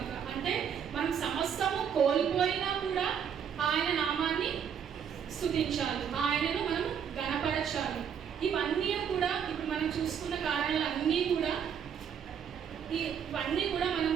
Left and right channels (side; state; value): left; quieter; 7.9 dB